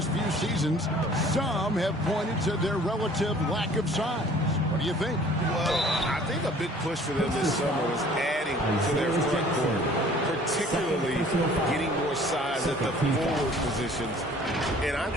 few seasons, some have pointed to their relative lack of size. What do you think? Well, I think a big push for them this summer was adding to their front court, particularly getting more size at the forward positions. And I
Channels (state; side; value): normal; both; correlation 0.52